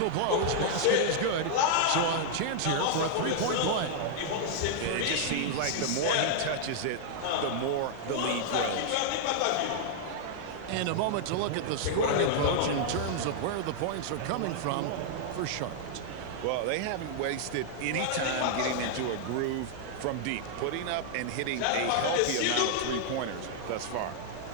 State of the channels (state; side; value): different; both; correlation -0.01